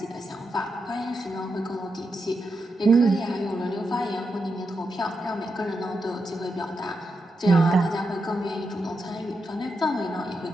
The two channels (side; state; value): both; normal; correlation 0.86